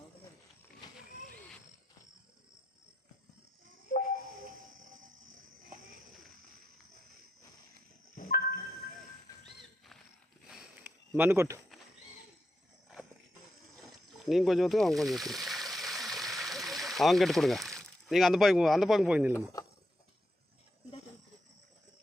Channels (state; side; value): normal; both; correlation 0.84